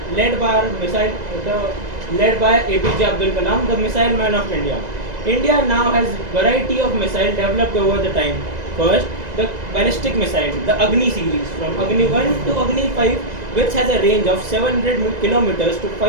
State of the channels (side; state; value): left; late; 2.0 ms